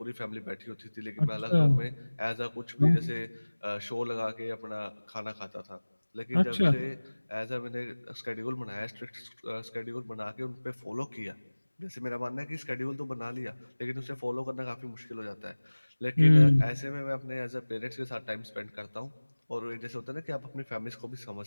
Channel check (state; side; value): inverted; both; correlation -1.00